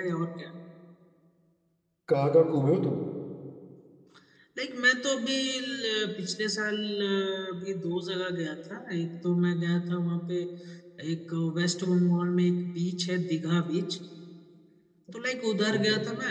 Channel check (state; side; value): identical; both; correlation 1.00